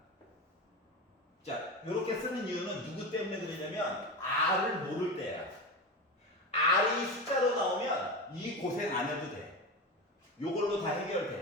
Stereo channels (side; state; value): both; normal; correlation 0.22